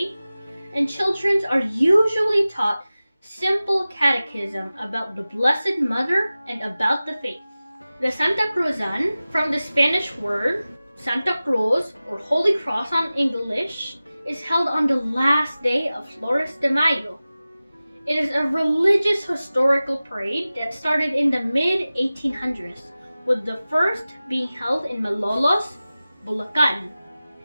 and children are usually taught simple catechism about the Blessed Mother and about the faith. The SANTACRUZAN, from the Spanish word Santa Cruz or Holy Cross on English, is held on the last day of Flores de Mayo. It is a religious historical parade that started in the mid-1800s, with the first being held in Malolos, Bulacan.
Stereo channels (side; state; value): both; inverted; correlation -0.96